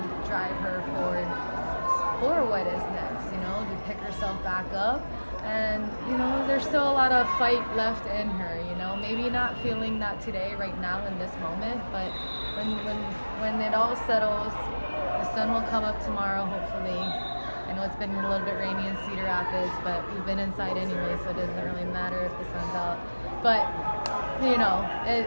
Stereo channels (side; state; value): both; inverted; correlation -1.00